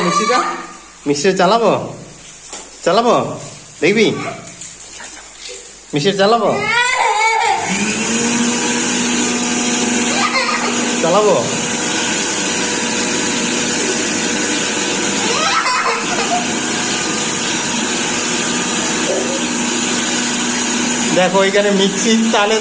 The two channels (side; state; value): both; identical; correlation 1.00